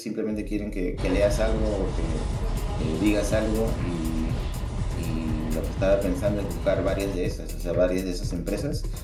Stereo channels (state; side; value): identical; both; correlation 1.00